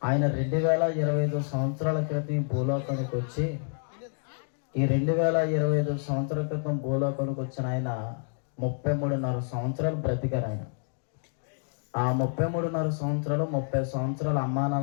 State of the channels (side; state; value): right; silent; digital silence